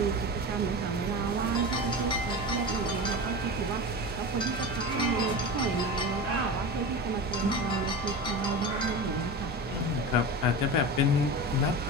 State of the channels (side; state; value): both; normal; correlation 0.27